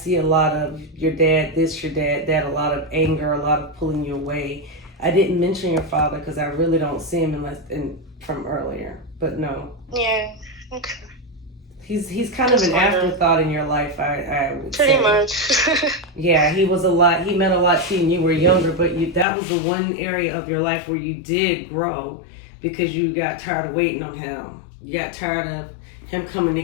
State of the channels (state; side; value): drops out; right; at 19.2 s